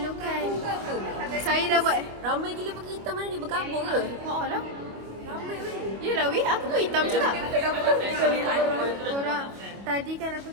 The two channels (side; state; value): left; late; 25 ms